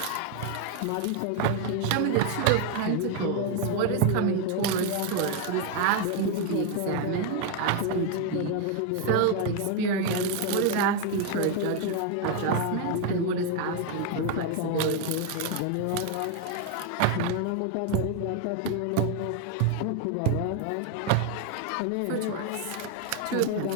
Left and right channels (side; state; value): both; different; correlation 0.01